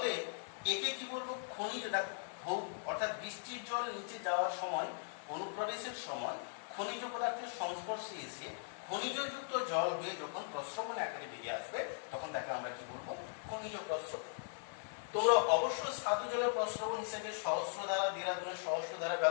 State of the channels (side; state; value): right; silent; digital silence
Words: একে কি বলবো, খনিজ। দেখো অর্থাৎ বৃষ্টির জল নিচে যাওয়ার সময়, অনুপ্রবেশের সময় খনিজ পদার্থের সংস্পর্শে এসে খনিজযুক্ত জল হয়ে যখন প্রস্রবণ আকারে বেরিয়ে আসবে, তখন তাকে আমরা কি বলবো, খনিজ প্রস্রবণ। তোমরা অবশ্যই স্বাদু জলের প্রস্রবণ হিসেবে সহস্রধারা, দেরাদুনের সহস্রধারা